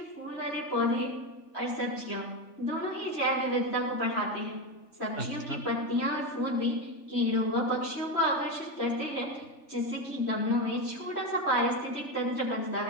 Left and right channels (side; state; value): right; late; 3.4 ms